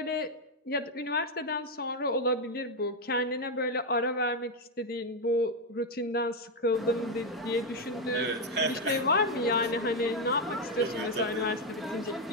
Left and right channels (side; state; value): both; normal; correlation 0.05